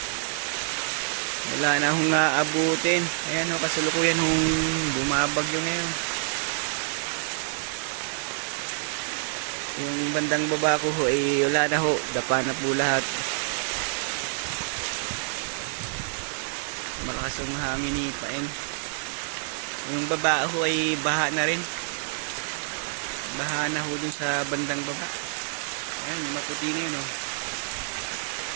Wala na hong aabutin. Ayan ho, kasalukuyan hong bumabagyo ngayon. Yung bandang baba ko ho, wala na ho. Dapa na po lahat. Malakas yung hangin ni Paeng. Yung baba ho ay baha na rin. Baha na ho dun sa bandang baba. Ayan, maputi na yun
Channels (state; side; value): silent; left; digital silence